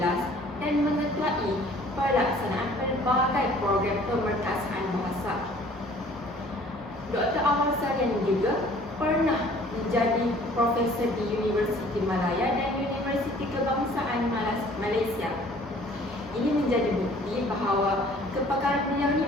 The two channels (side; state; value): both; normal; correlation 0.53